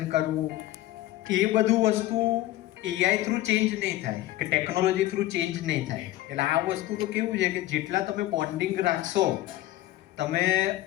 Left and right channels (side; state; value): right; quieter; 15.7 dB